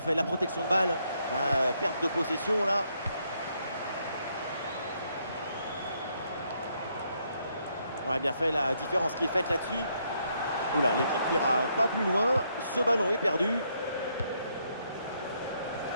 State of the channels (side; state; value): both; inverted; correlation -0.74